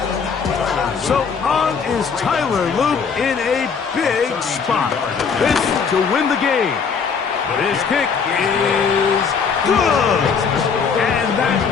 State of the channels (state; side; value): quieter; right; 5.9 dB